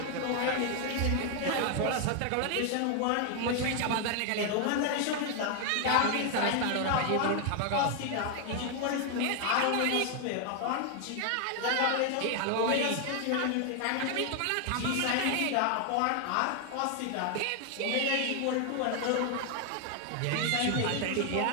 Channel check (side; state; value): both; different; correlation 0.00